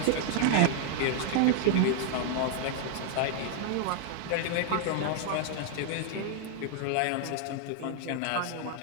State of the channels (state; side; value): different; both; correlation 0.00